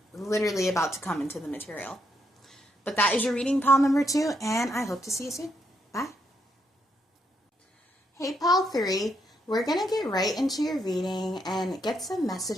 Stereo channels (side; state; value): both; normal; correlation 0.78